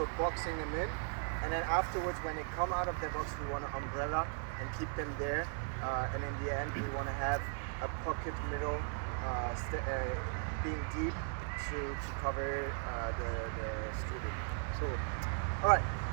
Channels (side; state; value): left; silent; 53 dB below the other